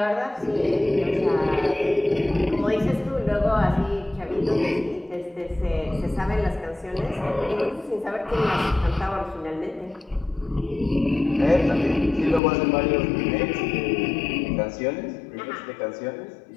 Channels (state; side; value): drops out; right; at 12.4 s